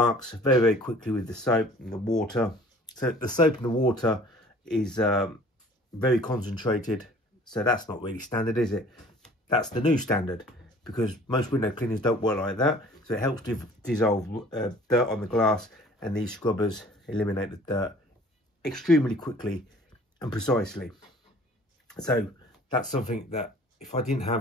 very, very quickly with the soap and the water. So the soap and the water is very concentrated, so that's not really standard, is it? That's the new standard, because most window cleaners don't work like that. So it helps to dissolve dirt on the glass, and these scrubbers eliminate the dirt extremely quickly and precisely. So that's something that if I didn't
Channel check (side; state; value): both; normal; correlation 0.51